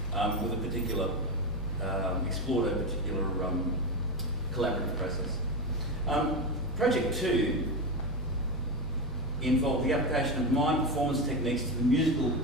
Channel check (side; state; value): both; normal; correlation 0.16